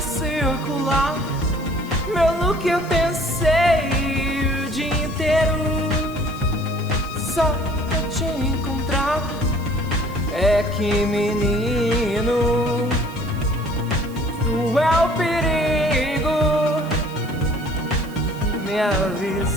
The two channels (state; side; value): noise; right; hiss, 22 dB below the sound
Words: circular. Meu look eu pensei o dia inteiro só pra te encontrar. É que menino, tu é o perigo. Me